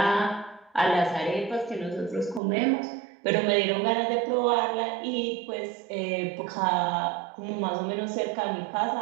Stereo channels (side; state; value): left; drops out; at 2.4 s